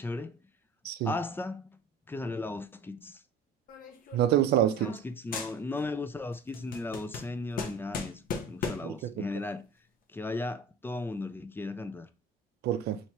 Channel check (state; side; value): quieter; left; 3.6 dB